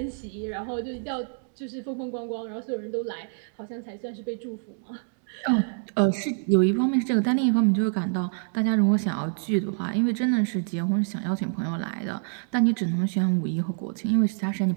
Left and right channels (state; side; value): silent; left; 60 dB below the other